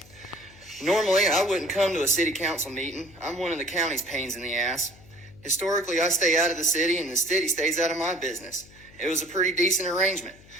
Normally, I wouldn't come to a city council meeting. I'm one of the county's pains in the ass. Historically, I stay out of the city, and the city stays out of my business. It was a pretty decent arrangement.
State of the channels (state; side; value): noise; left; hum, 23 dB below the sound